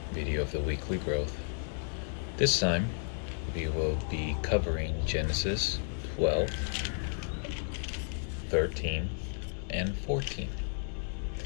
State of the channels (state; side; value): silent; right; digital silence